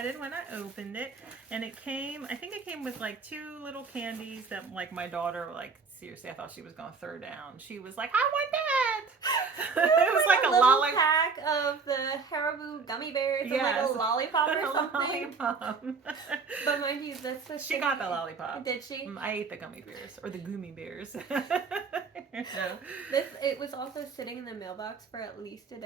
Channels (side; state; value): left; quieter; 5.0 dB